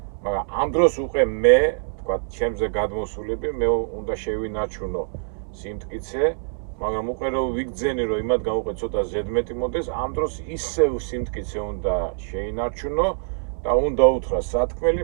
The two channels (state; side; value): silent; left; digital silence